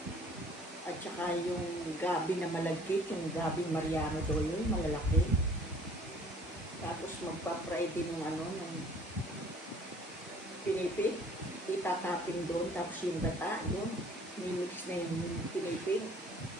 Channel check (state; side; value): normal; both; correlation 0.54